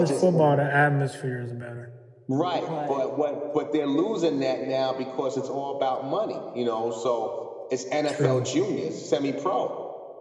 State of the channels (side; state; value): both; identical; correlation 1.00